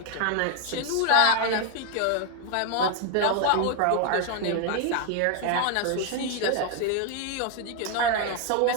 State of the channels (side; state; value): both; different; correlation 0.01